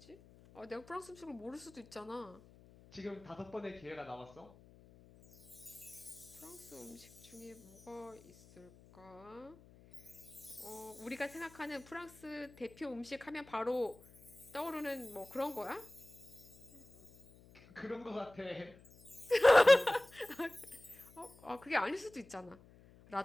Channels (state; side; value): noise; left; hum, 23 dB below the sound